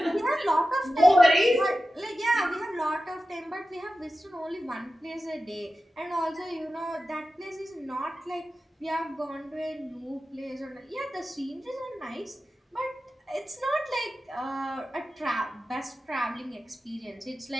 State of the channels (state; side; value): normal; both; correlation 0.93